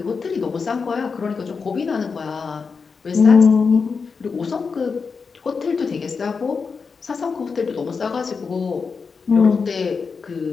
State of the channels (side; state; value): right; quieter; 5.2 dB